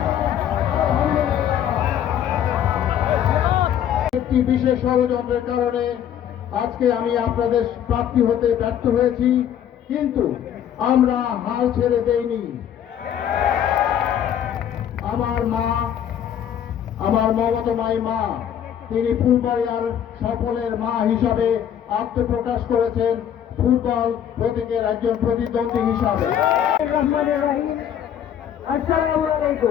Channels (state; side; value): quieter; right; 9.7 dB